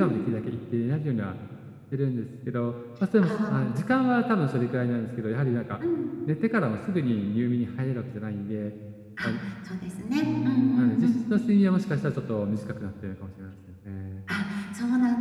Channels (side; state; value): both; identical; correlation 1.00